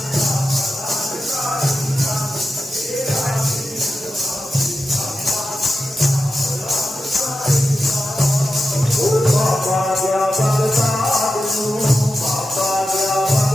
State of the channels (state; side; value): normal; both; correlation 0.91